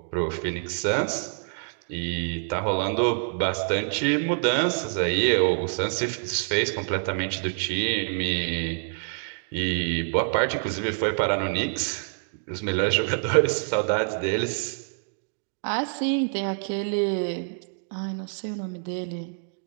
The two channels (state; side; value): silent; left; digital silence